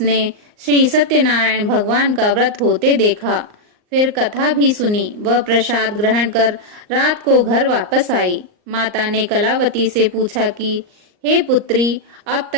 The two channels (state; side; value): late; left; 38 ms